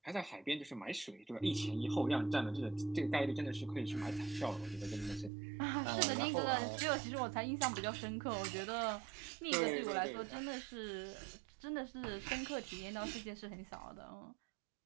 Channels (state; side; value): drops out; left; at 5.3 s